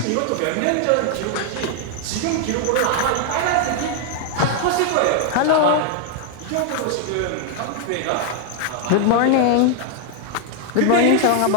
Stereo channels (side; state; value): both; different; correlation 0.00